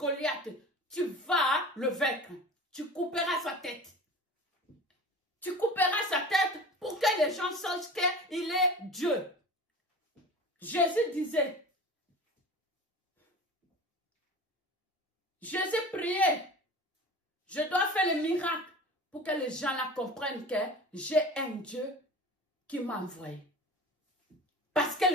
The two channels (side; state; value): both; normal; correlation 0.36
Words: tu vas le vaincre. Tu couperas sa tête. Tu couperas sa tête pour que les gens sachent qu'il est Dieu. Jésus disait, Jésus priait, je dois faire le miracle pour que les gens la comprennent que j'ai un Dieu qui m'a envoyé. Parce que